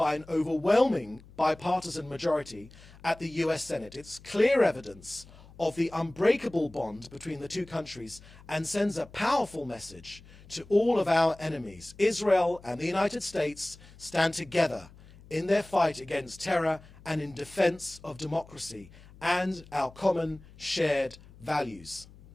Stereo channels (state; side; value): noise; left; hum, 22 dB below the sound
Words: an overwhelming bipartisan majority at the US Senate. It's clear evidence of the unbreakable bond between the two countries and sends a powerful message to all of our enemies. Israel and the United States stand together in their fight against terror and in defense of democracy and our common shared values.